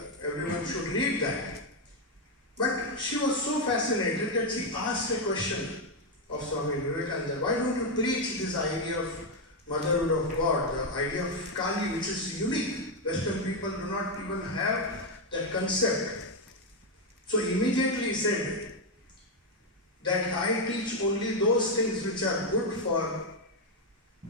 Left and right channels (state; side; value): normal; both; correlation 0.04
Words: Everyone should read that. But she was so fascinated that she asked a question of Swami Vivekananda. Why don't you preach this idea of motherhood of God, the idea of Kali, which is unique? Western people do not even have that concept. So immediately he said that I teach only those things which are good for,